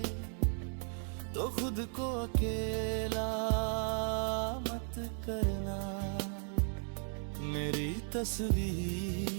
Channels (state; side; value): silent; left; 54 dB below the other